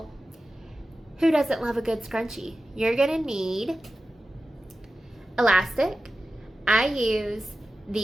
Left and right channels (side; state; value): both; normal; correlation 0.94